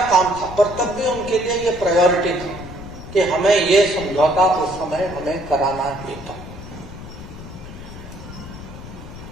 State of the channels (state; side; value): noise; left; rumble, 13 dB below the sound